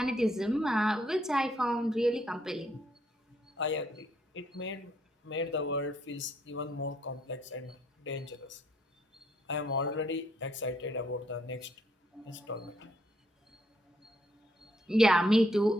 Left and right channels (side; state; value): both; normal; correlation 0.71